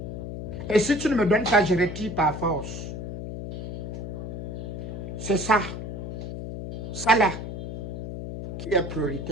Et si tu ne me donnes pas, je retire par force. C'est ça. Ça là, qui est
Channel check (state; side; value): noise; left; hum, 7 dB below the sound